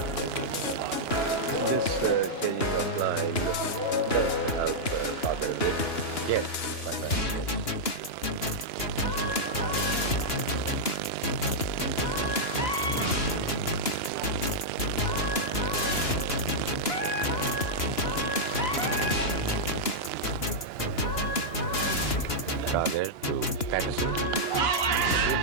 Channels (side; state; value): right; late; 2.9 ms